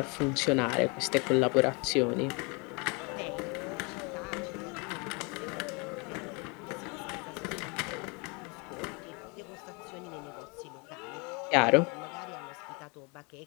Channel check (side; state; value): right; quieter; 30.7 dB